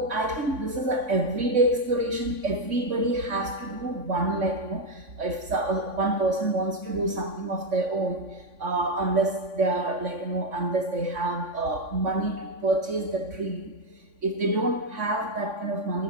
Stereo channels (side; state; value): left; late; 3.5 ms